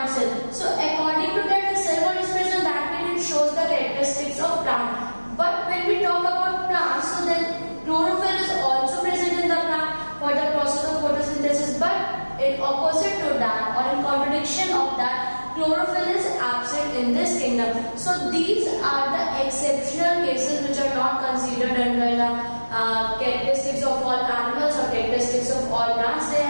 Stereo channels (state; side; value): inverted; both; correlation -1.00